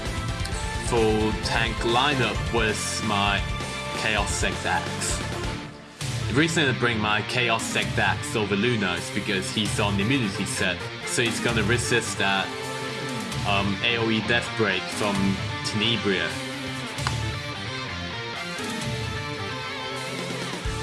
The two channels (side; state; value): both; identical; correlation 1.00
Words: Full tank lineup with my Chaos Sect Axe. The reason I bring my Chaos Sect Axe over Luna is because he's on the immunity set, so he's gonna resist that AoE Death Break from Tenebria.